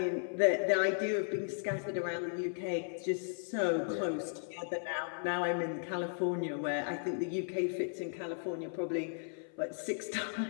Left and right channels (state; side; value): silent; right; 54 dB below the other